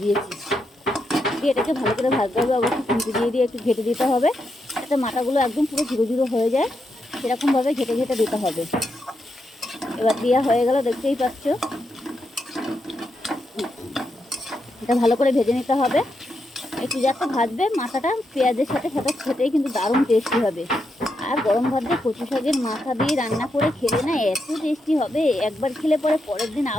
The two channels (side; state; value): both; normal; correlation 0.83